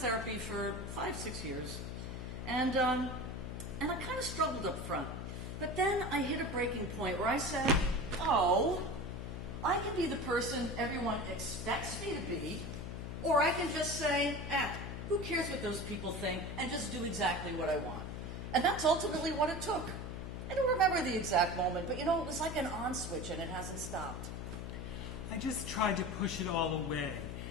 for 5-6 years, and I kind of struggled up front. But then I hit a breaking point where I said, oh, I can be the person everyone expects me to be, or I can just say, who cares what those people think, and just do exactly what I want. And that's ultimately what it took. I don't remember the exact moment, but you know, it was like an on switch and it hasn't stopped. I just tried to push it all away.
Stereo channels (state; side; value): noise; left; hum, 6 dB below the sound